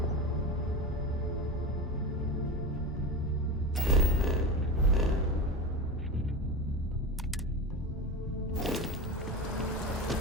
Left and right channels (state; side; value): normal; both; correlation 0.24